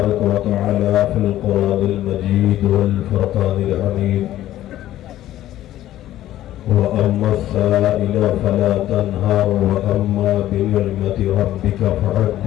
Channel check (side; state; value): right; quieter; 13.6 dB